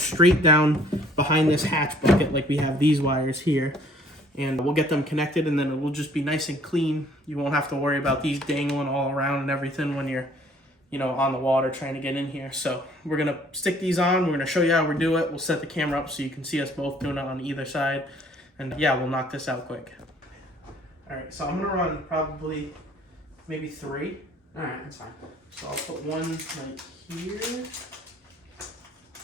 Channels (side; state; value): both; normal; correlation 0.58